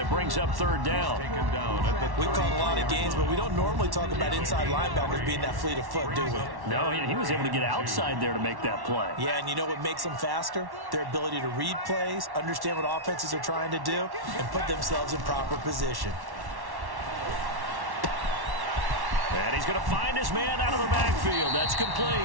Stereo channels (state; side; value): late; left; 1.1 ms